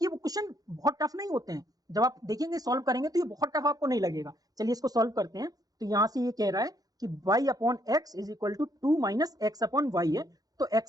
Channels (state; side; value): late; left; 0.18 ms